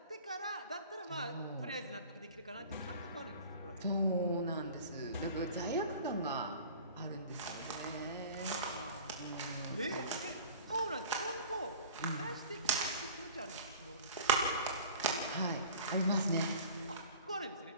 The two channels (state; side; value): inverted; both; correlation -0.42